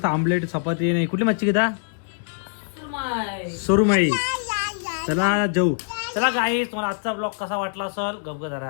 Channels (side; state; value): right; silent; digital silence